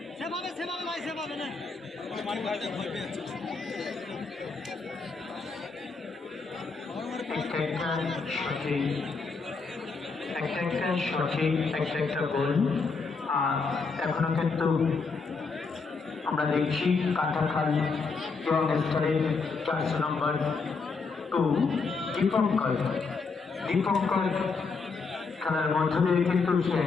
একটা গোল। আর এখনো কিন্তু আমরা দেখছি কাটাখাল ইয়ং স্তরের 400 নম্বর 2 দীপঙ্কর খেলার মধ্য দিয়ে কিন্তু সে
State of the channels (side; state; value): right; quieter; 4.5 dB